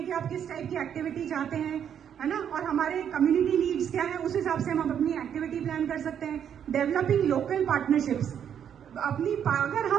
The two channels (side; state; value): left; quieter; 8.8 dB